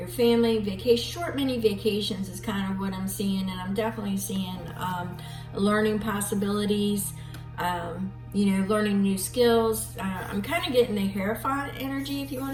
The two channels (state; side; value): identical; both; correlation 1.00